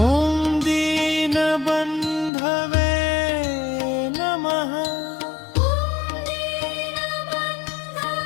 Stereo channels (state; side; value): drops out; right; at 2.3 s